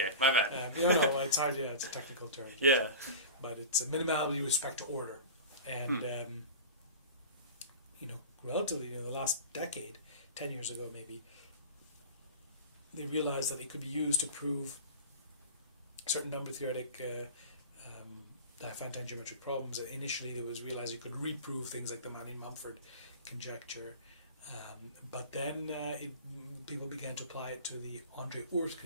My bad. It's hard. Yeah, it's a technical term. Yeah. But it's a minimality with respect to order, and relatively in the last decade, 10 years ago maybe, they realized that it could be used to prove certain number theoretic Diophantine geometric problems. Initially, it was realized you could reprove things like the Manning-Mumford conjecture, but then people began to apply it to the Andre Oort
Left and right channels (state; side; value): inverted; both; correlation -0.32